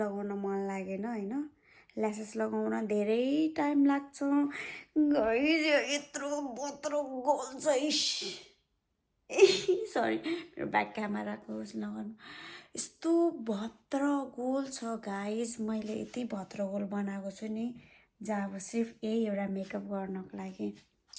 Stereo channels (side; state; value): both; identical; correlation 1.00